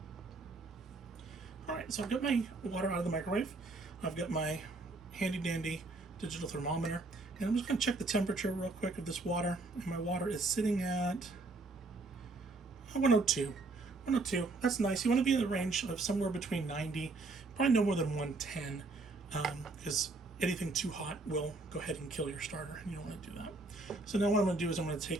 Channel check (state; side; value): quieter; left; 3.4 dB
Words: All right, so I've got my water out of the microwave. I've got my handy dandy digital thermometer, and I'm just going to check the temperature real quick of this water. And my water is sitting at 102. 102. That's nice. You want to be in the range of somewhere between 90, probably no more than 110, because anything too hot will go ahead and kill your starter, and you don't want to do that. So now what I'm going to do is I'm going to